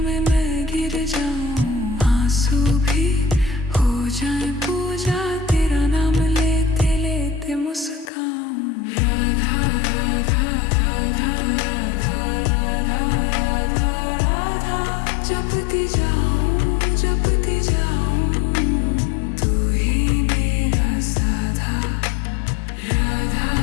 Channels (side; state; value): right; drops out; at 8.1 s